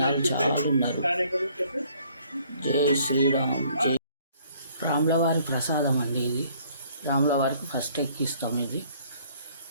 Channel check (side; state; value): both; inverted; correlation -0.61